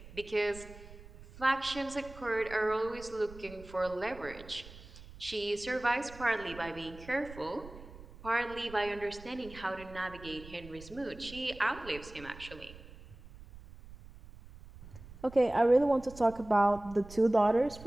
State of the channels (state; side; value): noise; right; rumble, 17 dB below the sound